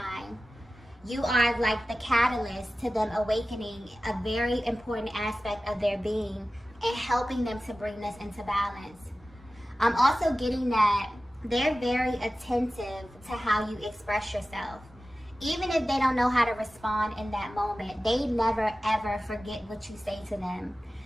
You are like the catalyst to them awakening a very important aspect of their being and helping them to bring this into balance. I'm also getting that they're very attentive to how you express yourself. Even if they don't know how to respond in that moment, they never ever forget what you say to them.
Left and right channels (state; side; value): normal; both; correlation 0.95